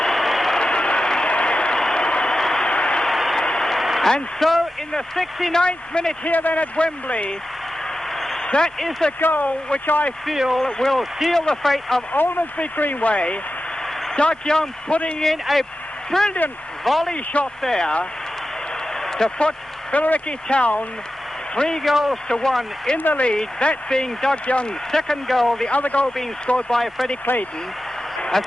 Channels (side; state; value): both; normal; correlation 0.92